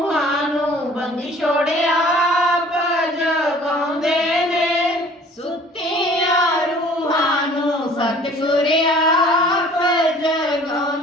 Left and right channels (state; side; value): normal; both; correlation 0.51